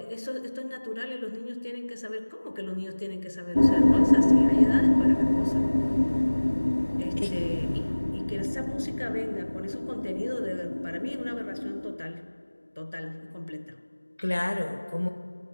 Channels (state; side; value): inverted; both; correlation -1.00